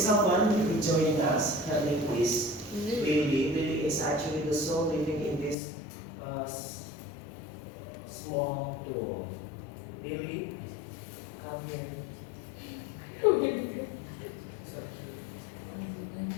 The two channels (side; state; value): right; drops out; at 5.6 s